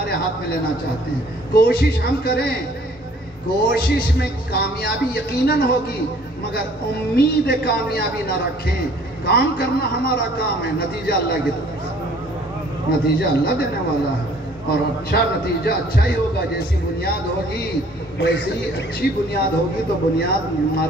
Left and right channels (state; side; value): normal; both; correlation 0.56